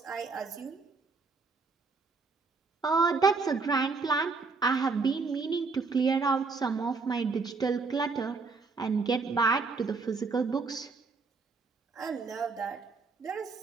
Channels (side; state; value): left; quieter; 4.4 dB